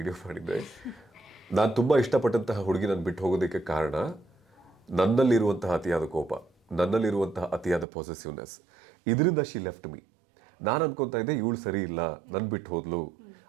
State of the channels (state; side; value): drops out; left; at 7.9 s